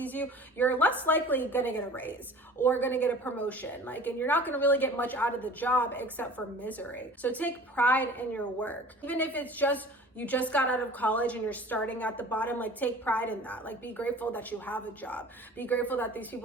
you. You're less likely going to get a raise or going to get a promotion. And you're not going to really get much out of the job except for misery. So take pride in your work. Even if it's just you just got out of college and you're starting at the bottom, take pride in that. Be grateful that you have a job. Be grateful that these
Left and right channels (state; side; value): normal; both; correlation 0.44